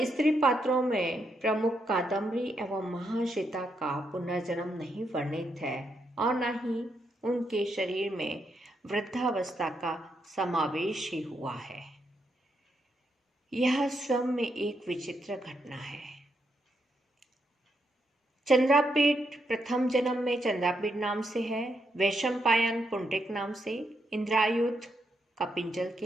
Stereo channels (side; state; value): both; normal; correlation 0.80